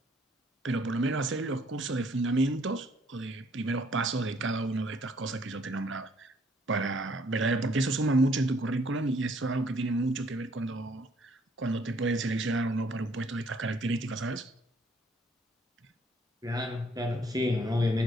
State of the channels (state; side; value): normal; both; correlation 0.64